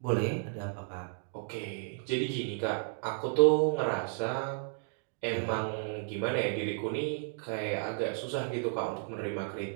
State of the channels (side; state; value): left; silent; 55 dB below the other